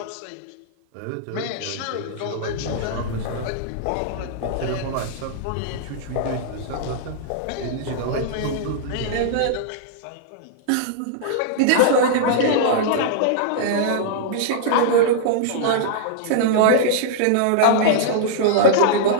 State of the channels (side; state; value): both; different; correlation -0.01